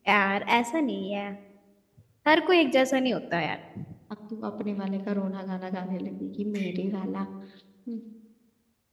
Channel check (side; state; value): both; identical; correlation 1.00